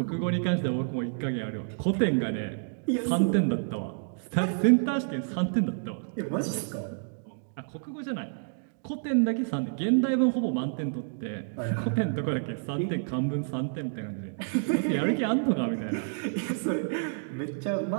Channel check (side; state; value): left; silent; digital silence